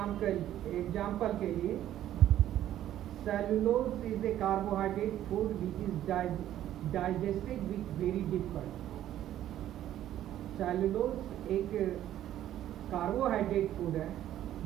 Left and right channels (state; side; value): quieter; left; 12.2 dB